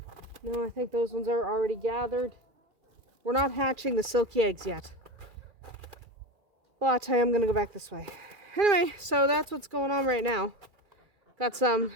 No, I think those ones are already gathered. We're not hatching the silky eggs yet. But I am going to go back this way. Anyway, so that's what's going on right now. Got some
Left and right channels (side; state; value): left; late; 2.3 ms